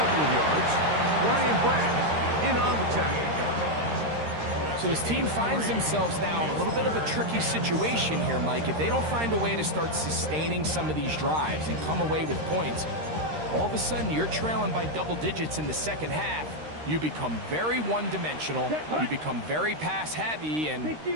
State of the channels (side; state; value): left; late; 13 ms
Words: of yards. Ryan Brand in on the tackle. So his team finds themselves now in a little bit of a tricky situation here, Mike. If they don't find a way to start sustaining some of these drives and come away with points, all of a sudden you're trailing by double digits in the second half. You become very one-dimensional, you become very pass-heavy, and